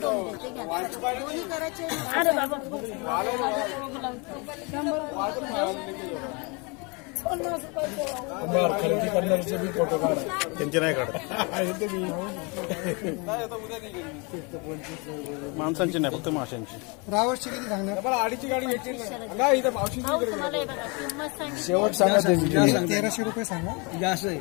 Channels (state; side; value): quieter; right; 30.4 dB